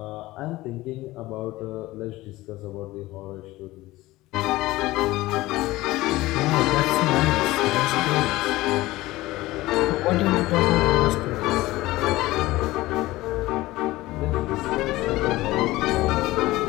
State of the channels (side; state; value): right; quieter; 18.4 dB